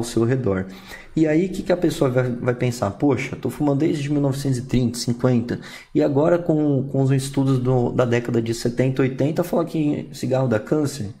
seu redor. E aí o que a pessoa vai pensar? Poxa, estou fumando desde 1930, 50 e agora com os estudos da década de 70, 80 fala que cigarro dá câncer?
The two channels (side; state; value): both; identical; correlation 1.00